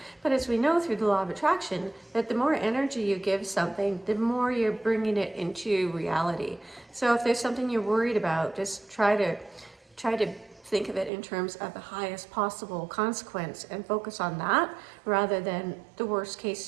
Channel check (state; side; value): drops out; left; at 11.1 s